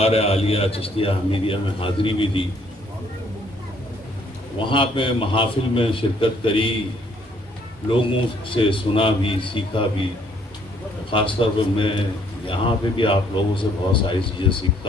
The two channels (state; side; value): normal; both; correlation 0.65